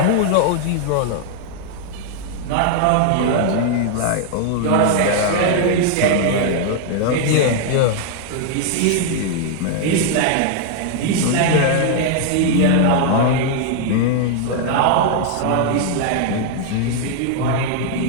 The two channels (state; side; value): different; both; correlation 0.00